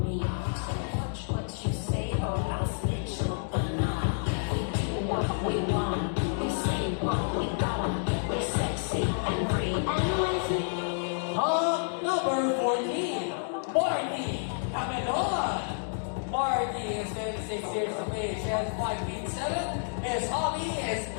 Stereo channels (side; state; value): right; silent; digital silence